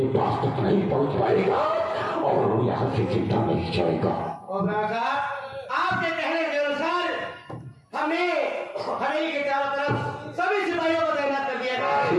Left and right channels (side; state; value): both; identical; correlation 1.00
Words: पास तक नहीं पहुँच पाएगा और यहाँ से चिंता नहीं जाएगा। और आपके कहने के अनुसार हमने हवेली के चारों तरफ सभी सिपाहियों को तैनात कर दिया गया